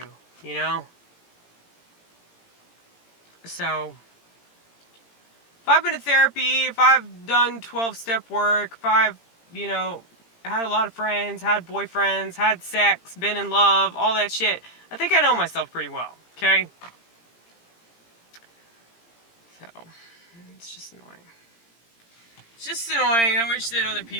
you know? So, if I've been to therapy, if I've done 12-step work, if I've, had a lot of friends, had boyfriends, had sex, been in love, all that shit, I think I know myself pretty well, okay? So, it's just annoying. It's just annoying. I wish that other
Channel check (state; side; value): late; right; 17 ms